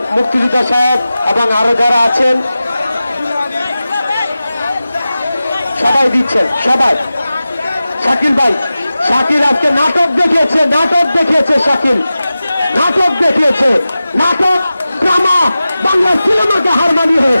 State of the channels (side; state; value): both; inverted; correlation -0.95